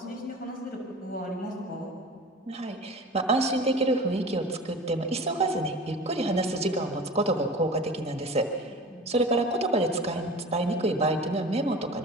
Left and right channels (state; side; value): normal; both; correlation 0.37